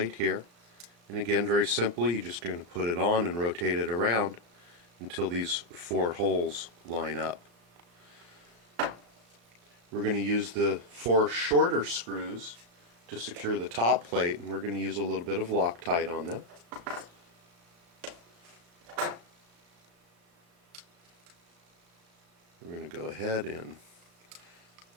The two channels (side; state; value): left; late; 35 ms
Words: here, and again very simply you're just going to put it on and rotate it around until these 4 holes line up. We're going to use the 4 shorter screws to secure the top plate, and we're going to use a little bit of Loctite on them. We're going to go ahead and